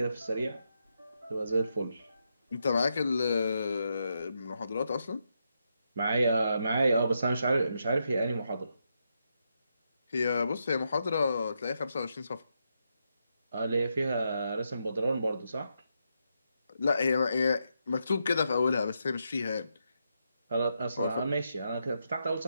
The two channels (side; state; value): both; inverted; correlation -0.82